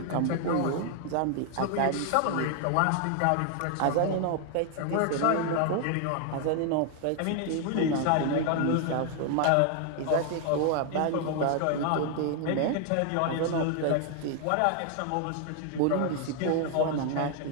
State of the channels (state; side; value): different; both; correlation 0.00